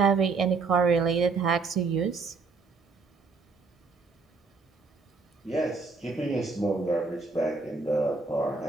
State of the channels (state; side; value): quieter; left; 4.3 dB